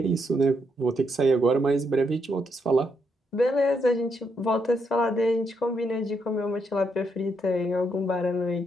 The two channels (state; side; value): normal; both; correlation 0.78